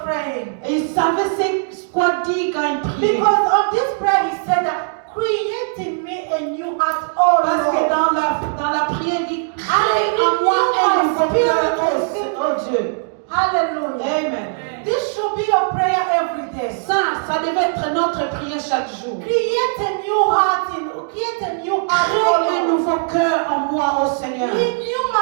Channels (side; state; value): left; silent; digital silence